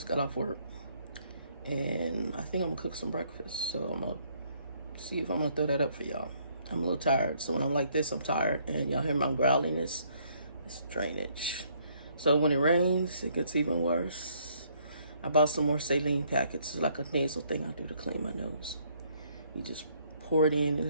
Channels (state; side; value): inverted; both; correlation -0.66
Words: got off work and I think I'm gonna cook some breakfast. So I'm gonna see if I'm gonna throw that up for y'all. I'm a little tired, so when I'm like this, I'm tired. And y'all hear my growling, it's drainage. So when it rains, it gets even worse. I bought some more saline packets. It's like a nasal thing I do to clean my nose. You just pour it in and